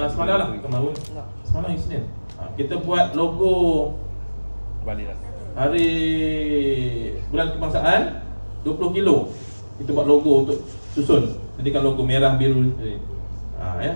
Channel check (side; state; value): both; inverted; correlation -1.00